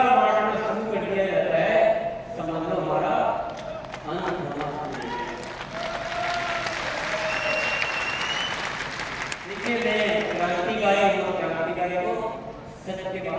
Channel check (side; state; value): both; identical; correlation 1.00